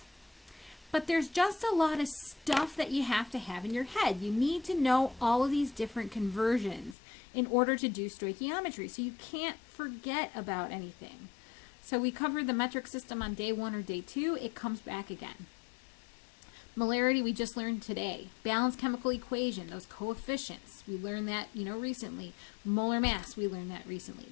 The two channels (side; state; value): right; drops out; at 7.0 s